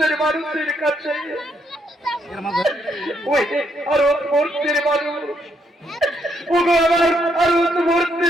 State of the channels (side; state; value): both; normal; correlation 0.75